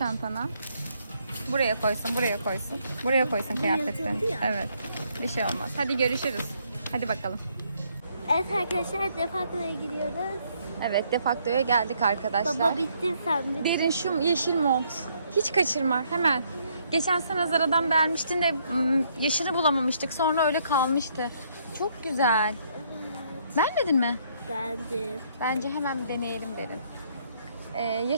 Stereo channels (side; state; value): both; inverted; correlation -0.70